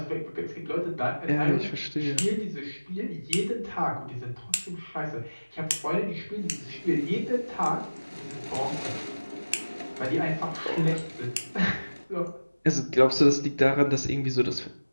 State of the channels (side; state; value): both; inverted; correlation -1.00